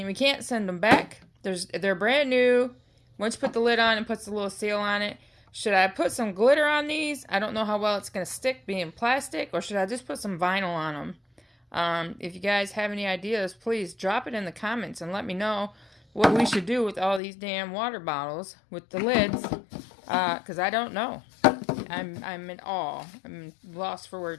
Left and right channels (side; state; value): right; drops out; at 17.2 s